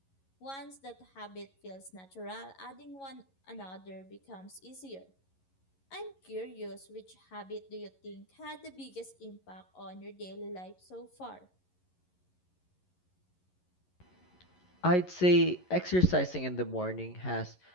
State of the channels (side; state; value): right; late; 11 ms